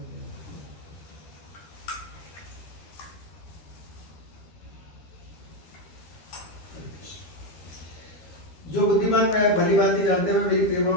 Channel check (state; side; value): late; right; 13 ms